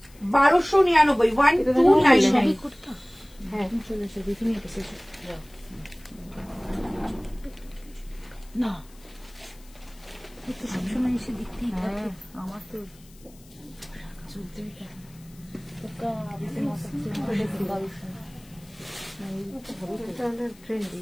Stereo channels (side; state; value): left; noise; hiss, 26 dB below the sound